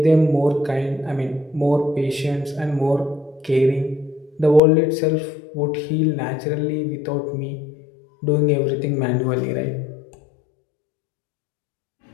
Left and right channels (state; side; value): drops out; right; at 4.6 s